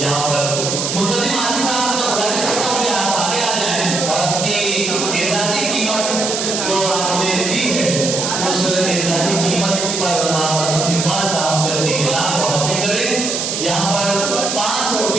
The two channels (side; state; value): right; noise; hiss, 2 dB below the sound